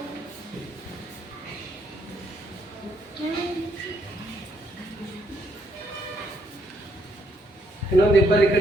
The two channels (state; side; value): normal; both; correlation 0.73